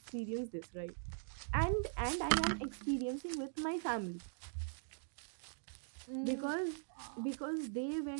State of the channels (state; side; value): silent; left; digital silence